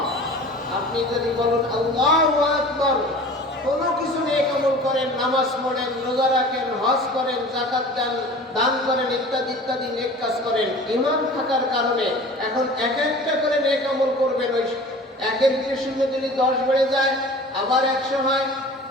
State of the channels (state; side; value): normal; both; correlation 0.42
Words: আপনি যদি বলুন আল্লাহু আকবার, কোনো কিছু নেক আমল করেন, নামাজ পড়েন, রোজা রাখেন, হজ করেন, যাকাত দেন, দান করেন, ইত্যাদি ইত্যাদি নেক কাজ করেন, ঈমান থাকার কারণে এখন এক একটা করে নেক আমল করবেন। ওই একের ভিতরে শূন্য দিলে 10 বেড়ে যায়, আবার 100 হয়,